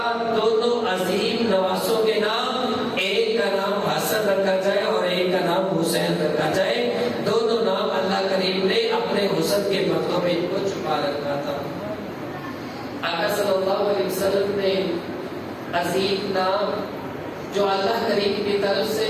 دونوں عظیم نواسوں کے نام، ایک کا نام حسن رکھا جائے اور ایک کا نام حسین رکھا جائے. دونوں نام اللہ کریم نے اپنے حسن کے پردوں میں ان کو چھپا رکھا تھا. آقا صلی اللہ علیہ وسلم نے عظیم نام جو اللہ کریم کی طرف سے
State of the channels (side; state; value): both; identical; correlation 1.00